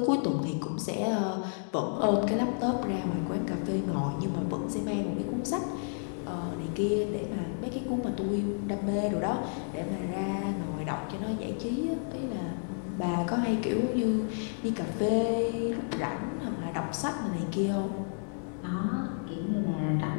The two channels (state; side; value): silent; right; digital silence